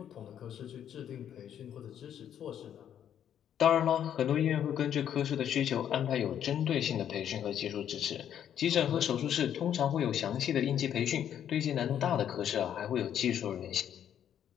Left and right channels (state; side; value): quieter; right; 9.7 dB